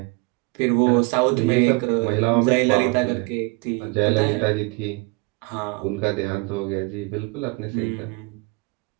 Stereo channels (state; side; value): quieter; left; 27.0 dB